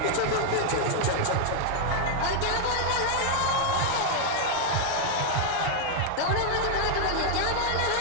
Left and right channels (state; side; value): different; both; correlation 0.00